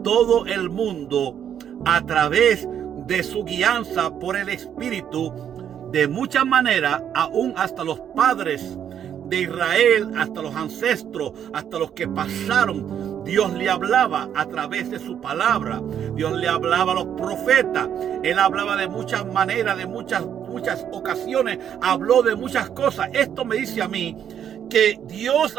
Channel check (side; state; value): left; quieter; 9.2 dB